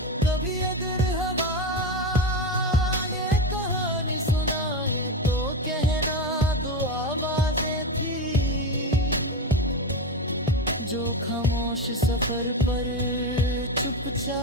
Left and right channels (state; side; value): normal; both; correlation 0.16